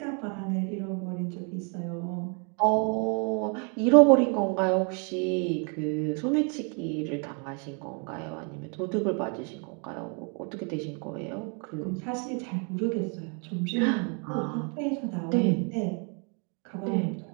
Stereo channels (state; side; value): quieter; left; 37.0 dB